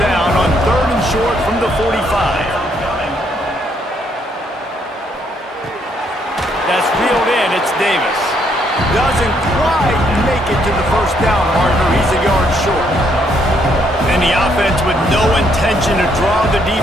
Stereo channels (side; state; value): both; normal; correlation 0.71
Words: down on 3rd and short from the 45. That's reeled in. It's Davis. Doesn't quite make it to the 1st down marker. He's a yard short. And the offense with no intention to draw the